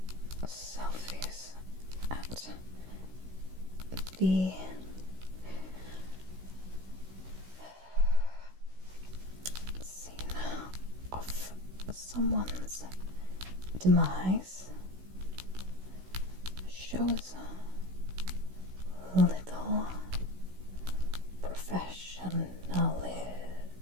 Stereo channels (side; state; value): left; late; 16 ms